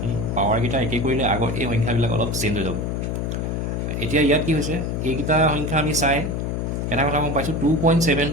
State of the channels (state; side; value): noise; left; hum, 2 dB below the sound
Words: পাৱাৰকেইটা একেই কৰিলে আগৰ এই সংখ্যাবিলাক অলপ চেঞ্জ হৈ যাব এতিয়া ইয়াত কি হৈছে এইকেইটা সংখ্যা আমি চাই এটা কথা গম পাইছোঁ